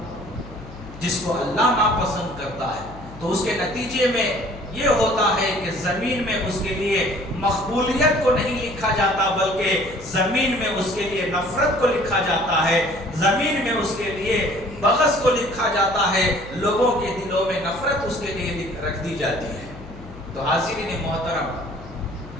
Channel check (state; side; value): noise; left; hum, 16 dB below the sound